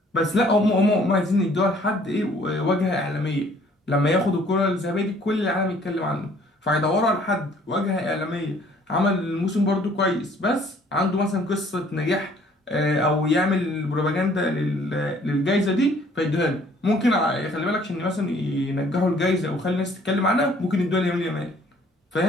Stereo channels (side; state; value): both; normal; correlation 0.59